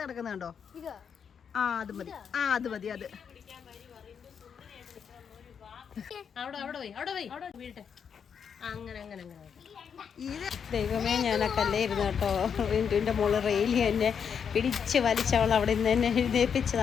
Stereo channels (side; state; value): right; quieter; 7.1 dB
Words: കിടക്കുന്നുണ്ടോ? അത് മതി, അത് മതി. അത് ദൈവമേ, ഞാനൊക്കെ അല്ലായിരുന്നു കേട്ടോ. റിൻറ്റുവിൻ്റെ മോള് റെയിലി എന്നെ പിടിച്ച് വലിച്ചവൾ അവിടെ നിന്ന് തന്നെ